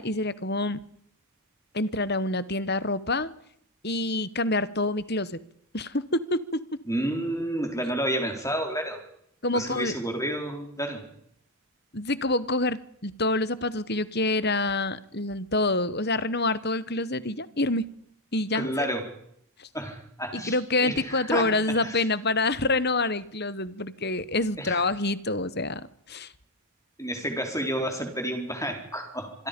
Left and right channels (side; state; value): both; normal; correlation 0.07